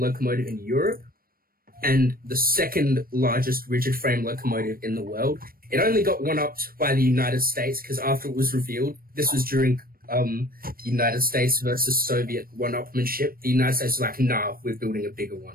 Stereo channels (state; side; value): late; left; 0.43 ms